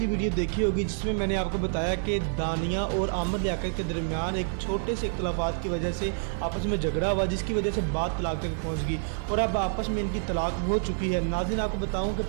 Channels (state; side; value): silent; left; digital silence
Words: वीडियो देखी होगी जिसमें मैंने आपको बताया कि दानिया और आमिर लियाकत के दरमियान एक छोटे से इख्तलाफात की वजह से आपस में झगड़ा हुआ, जिसकी वजह से बात तलाक तक पहुँच गई और अब आपस में इनकी तलाक हो चुकी है। नाज़रीन, आपको बताऊँ कि